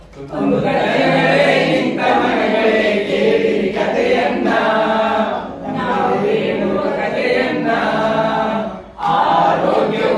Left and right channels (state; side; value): identical; both; correlation 1.00